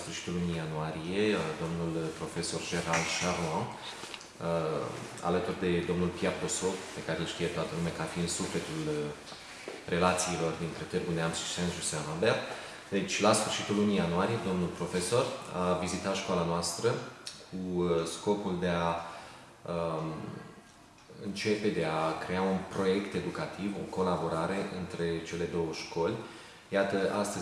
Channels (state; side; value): identical; both; correlation 1.00